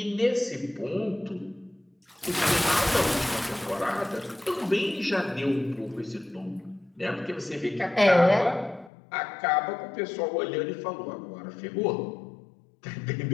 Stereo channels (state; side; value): drops out; right; at 8.9 s